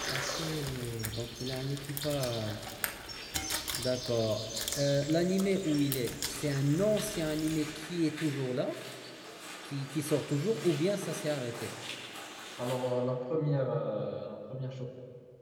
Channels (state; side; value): identical; both; correlation 1.00